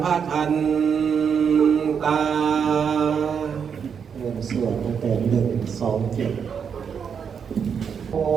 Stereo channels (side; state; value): left; quieter; 7.0 dB